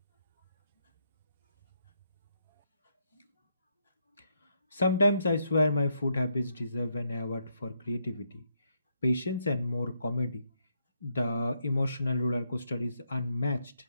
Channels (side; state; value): both; inverted; correlation -0.77